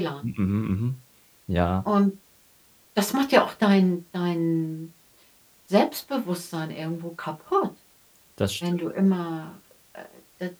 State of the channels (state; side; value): identical; both; correlation 1.00